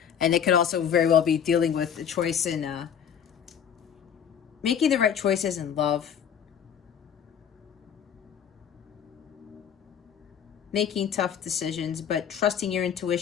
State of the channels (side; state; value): right; quieter; 8.3 dB